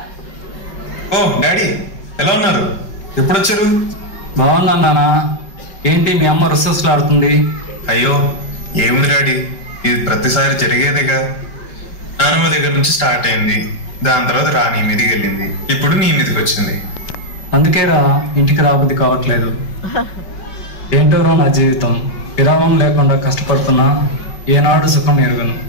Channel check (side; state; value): right; late; 5.1 ms